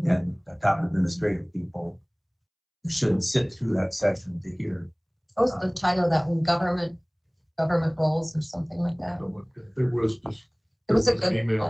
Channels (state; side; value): identical; both; correlation 1.00